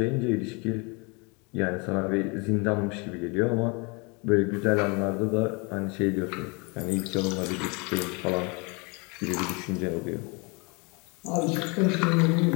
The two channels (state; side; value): quieter; right; 30.4 dB